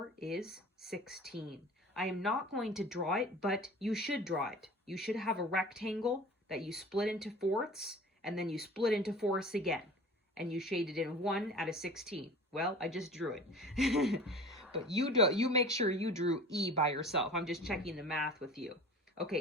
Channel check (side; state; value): both; normal; correlation 0.41